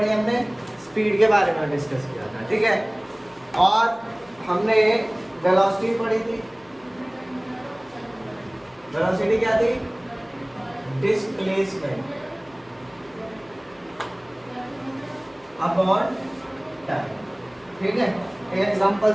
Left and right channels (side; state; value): left; noise; hum, 29 dB below the sound